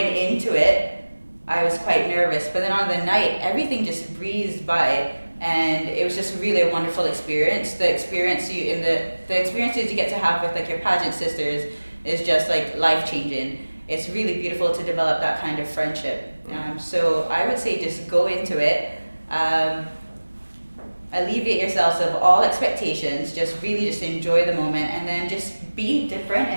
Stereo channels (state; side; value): inverted; both; correlation -1.00